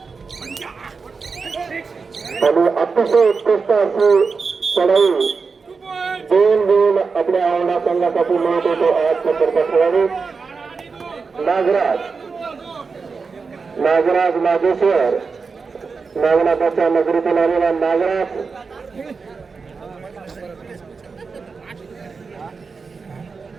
आणि अतिशय उत्कृष्ट अशी चढाई 2 गुण आपल्या औंढा संघासाठी मिळत होतो. 8 नंबरचा खेळाडू नागराज नागेश्वर नागनाथाच्या नगरीतून आलेला नागराज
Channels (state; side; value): quieter; left; 4.9 dB